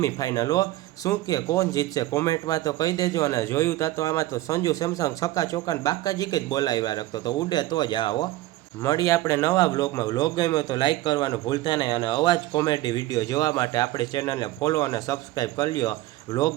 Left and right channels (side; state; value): left; quieter; 16.5 dB